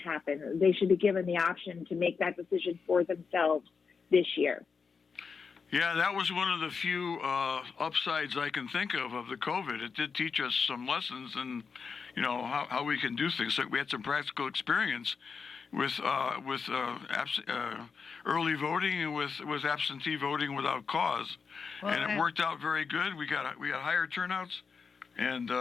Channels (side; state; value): right; quieter; 5.5 dB